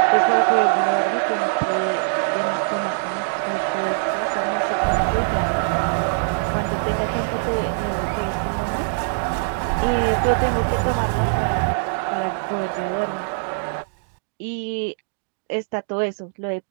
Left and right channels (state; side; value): silent; left; digital silence